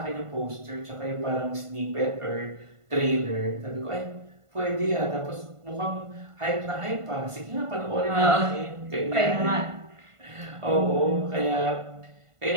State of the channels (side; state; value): left; late; 1.5 ms